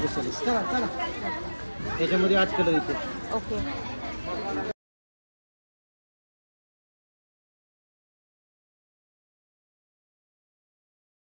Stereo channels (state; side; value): inverted; both; correlation -1.00